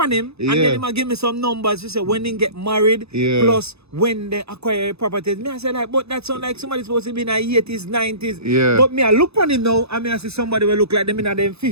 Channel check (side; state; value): left; late; 0.79 ms